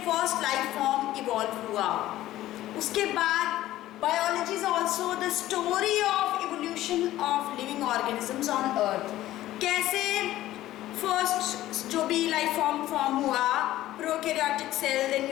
first life form evolve हुआ. उसके बाद biology is also the story of evolution of living organisms on earth. कैसे first जो भी लाइफ फॉर्म हुआ, prokaryotic cell, then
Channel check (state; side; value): quieter; right; 14.8 dB